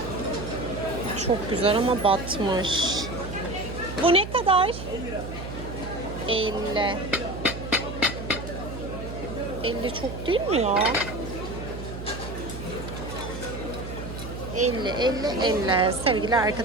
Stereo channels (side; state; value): right; noise; hum, 9 dB below the sound